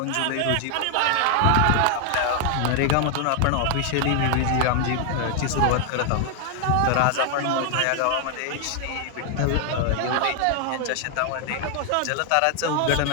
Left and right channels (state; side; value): different; both; correlation 0.00